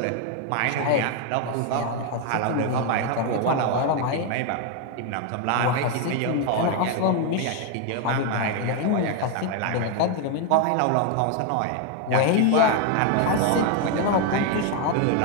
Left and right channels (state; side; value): different; both; correlation 0.01